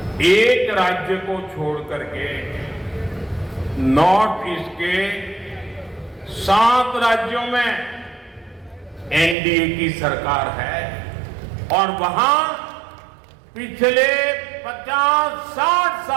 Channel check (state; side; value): drops out; left; at 9.3 s